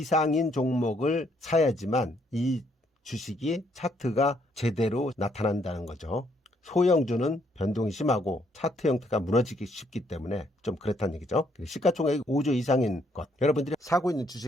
종목을 사야지만 이 주식이 차트가 제대로 나타난다는 거죠. 소형주는 변동이 심하고 차트 형태가 무너지기 쉽기 때문에 좀 그렇다는 얘기죠. 시가총액이 5조 이상인 것, 여러분들이 사고 있는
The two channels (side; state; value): both; normal; correlation 0.70